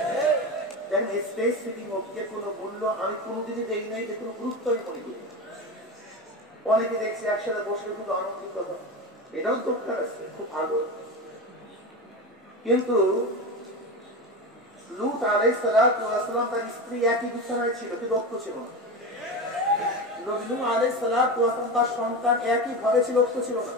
দেখেন স্টেজ সিটিং অফকে কোনো মূল্য আমি কোনোদিনই দেখি নাই, যে কোনো গুরুত্বই মনে করি। অনেকে দেখছি একসাথে বসে খুব আনন্দিত হয়, এটাও দরকার আছে, খুব ভালো। কিন্তু লূত আলাইহিস সালাম তার স্ত্রী একই বিছানায় ছিল, কিন্তু ঐক্য ছিল না। নবী নূহ আলাইহিস সালাম তার সন্তান একই ঘরে ছিল, ঐক্য ছিল না।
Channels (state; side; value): normal; both; correlation 0.23